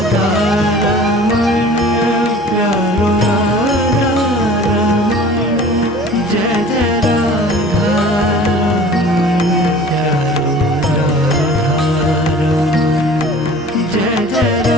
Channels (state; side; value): normal; both; correlation 0.45